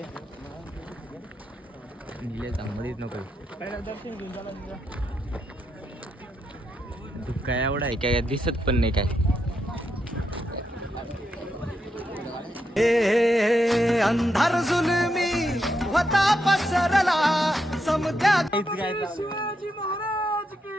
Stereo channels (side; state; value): both; normal; correlation 0.82